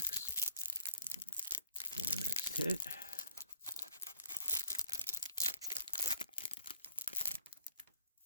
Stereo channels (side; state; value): both; inverted; correlation -0.53